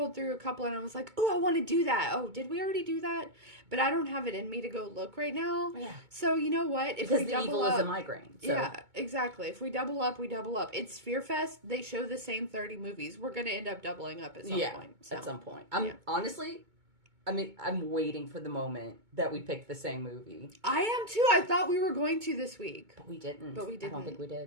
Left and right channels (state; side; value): late; left; 2.2 ms